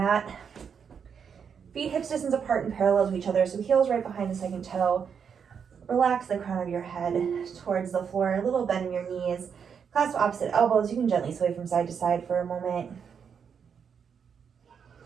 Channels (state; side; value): quieter; left; 7.0 dB